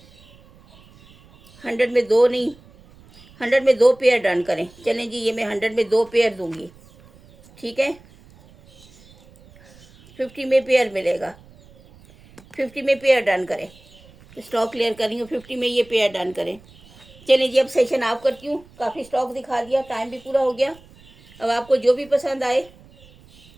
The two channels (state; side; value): noise; right; rumble, 25 dB below the sound